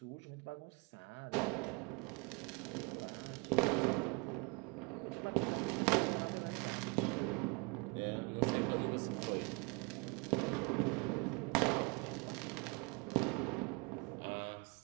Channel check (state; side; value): quieter; left; 29.5 dB